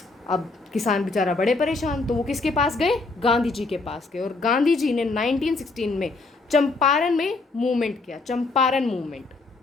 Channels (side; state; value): right; quieter; 3.6 dB